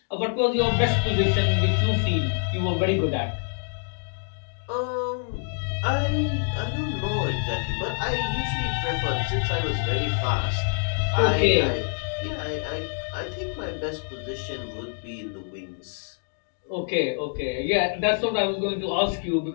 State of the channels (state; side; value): silent; right; digital silence